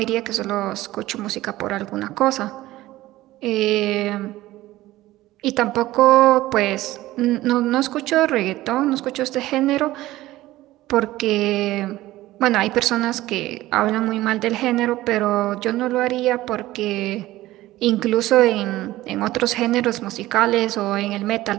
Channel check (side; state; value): left; quieter; 16.5 dB